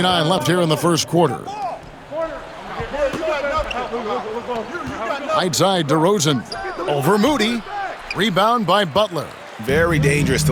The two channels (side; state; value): both; identical; correlation 1.00